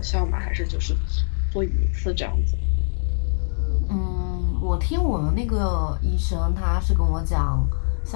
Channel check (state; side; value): silent; right; digital silence